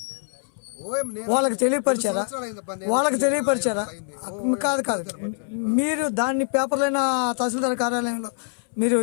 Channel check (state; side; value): silent; right; 62 dB below the other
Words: వాళ్ళకి తెలియపరిచారా? కాదు కాదు, మీరు దాన్ని పేపర్లైనా తహసీల్దార్ కార్యాలయంలో మీరు